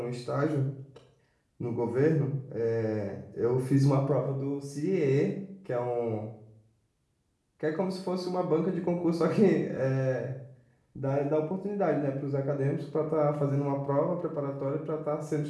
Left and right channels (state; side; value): identical; both; correlation 1.00